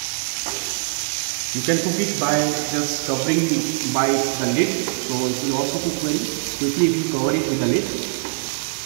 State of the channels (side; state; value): left; silent; digital silence